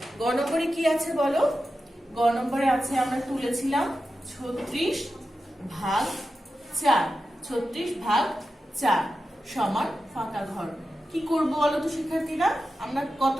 গ নম্বরে কি আছে বলো? গ নম্বরে আছে, আমরা তুলেছিলাম ৩৬ ভাগ ৪। ৩৬ ভাগ ৪ সমান ফাঁকা ঘর। কি করবো বলো তো শিক্ষার্থীরা? আমরা কত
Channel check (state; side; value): normal; both; correlation 0.91